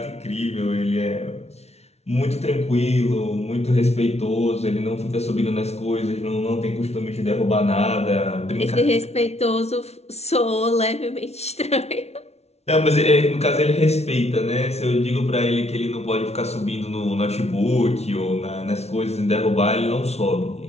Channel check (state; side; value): late; right; 0.31 ms